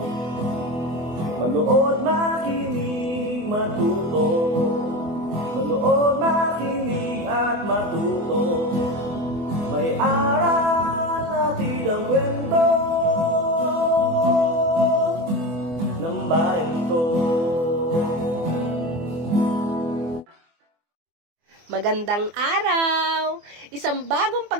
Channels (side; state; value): left; late; 24 ms